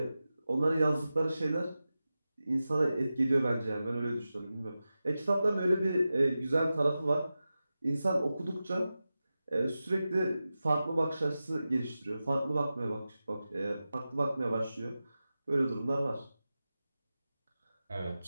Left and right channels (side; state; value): both; inverted; correlation -0.94